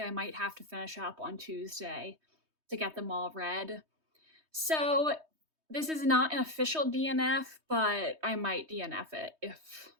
I might have to finish up on Tuesday to get them all read. So this is not an official DNF, but I might DNF it if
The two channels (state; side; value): late; left; 3.2 ms